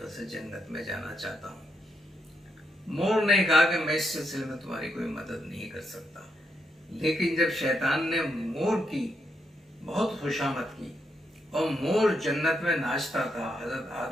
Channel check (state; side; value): normal; both; correlation 0.80